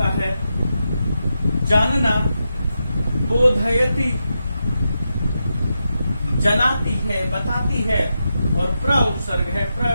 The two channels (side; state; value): both; inverted; correlation -0.87